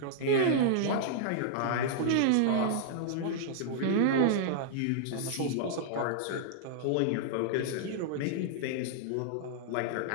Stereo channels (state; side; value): different; both; correlation -0.01